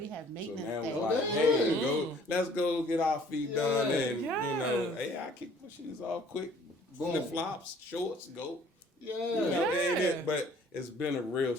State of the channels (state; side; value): normal; both; correlation 0.56